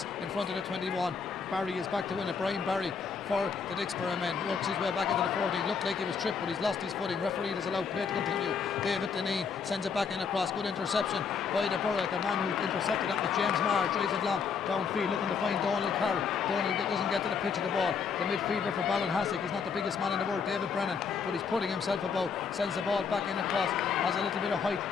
in front of the 21. Barry is back to win it. Brian Barry for the Dicksboro men works his way back into the 14. Looked like he was tripped, but he's lost his footing. Referee has allowed play to continue. David Deneen sends it back in across. Good interception by the Borough. The man who intercepted that was James Marr. Drives it long downfield looking to find Donald Carroll. Donald doesn't get to the pitch of the ball. The midfielder for Ballinahassig, he's not the biggest man in the world, David Brennan, but he's putting himself about. Sends the ball back in across. Has a little bit of height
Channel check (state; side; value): quieter; right; 5.9 dB